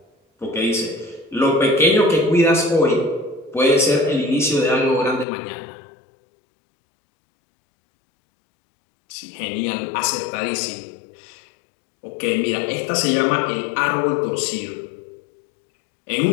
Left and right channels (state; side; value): drops out; right; at 5.2 s